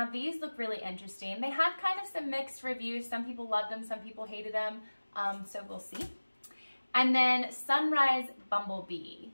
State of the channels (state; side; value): inverted; both; correlation -1.00